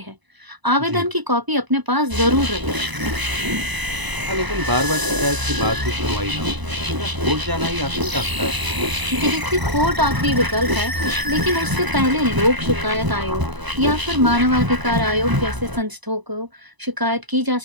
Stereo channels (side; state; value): left; late; 1.0 ms